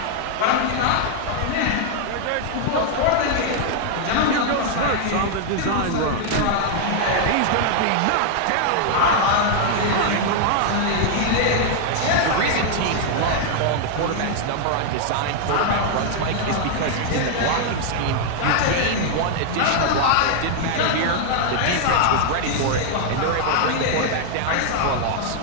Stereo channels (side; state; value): both; different; correlation 0.00